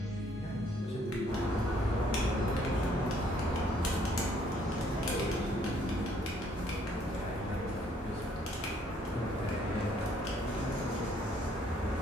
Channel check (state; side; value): normal; both; correlation 0.65